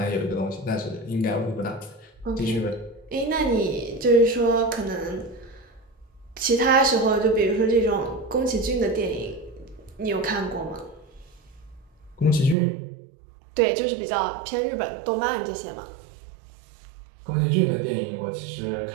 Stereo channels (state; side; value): drops out; left; at 12.6 s